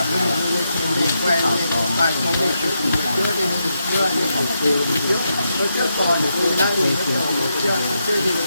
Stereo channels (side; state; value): both; inverted; correlation -0.83